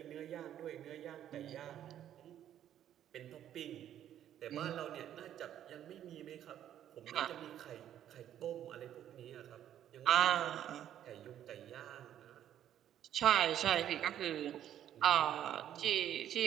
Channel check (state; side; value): quieter; left; 10.9 dB